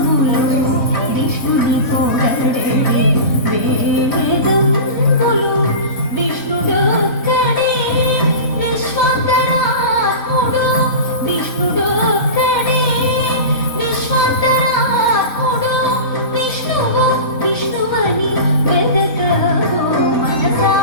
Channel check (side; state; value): right; late; 3.6 ms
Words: విష్ణుని పొగడే వేదం బలో విష్ణుడొక్కడే విశ్వంతరాత్ముడు విష్ణుడొక్కడే విశ్వంతరాత్ముడు విష్ణువు విష్ణువని వెదకవో మనసా